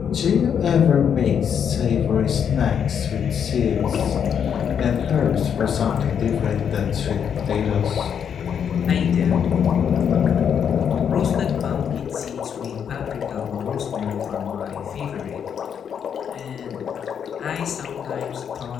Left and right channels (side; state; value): right; quieter; 7.9 dB